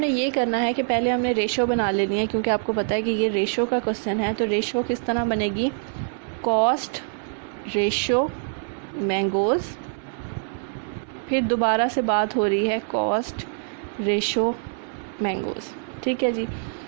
ये करना है कि पहले हमने रेशो बना लेनी है, क्योंकि आपको पता है कि ये रेशो का क्वेश्चन है। तो रेशो किस तरह बनेगी, कॉस्ट रेशो मैंगोज़, फिर दोबारा से बात हो रही है कॉस्ट रेशो मैंगोज़। ठीक है जी।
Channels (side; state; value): left; silent; 61 dB below the other